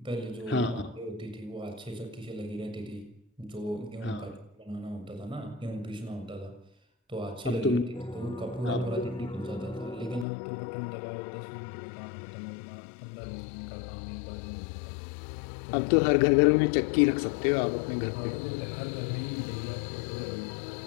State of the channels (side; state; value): right; drops out; at 10.2 s